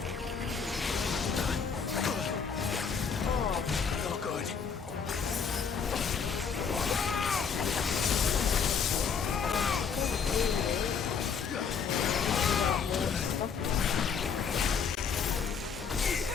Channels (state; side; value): quieter; right; 6.2 dB